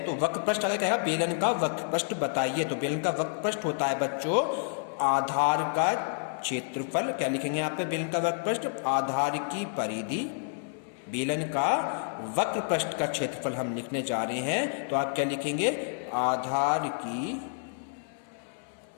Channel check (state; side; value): silent; right; 58 dB below the other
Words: तो वक्र पृष्ठ अगर कहेगा बेलन का वक्र पृष्ठ बताइए, तो बेलन का वक्र पृष्ठ होता है बच्चों आधार का क्षेत्रफल। क्या लिखेंगे यहाँ पे बेलन का वक्र पृष्ठ? आधार की परिधि। बेलन का वक्र पृष्ठ का क्षेत्रफल हम लिखने जा रहे हैं, तो आप क्या लिखेंगे? आधार की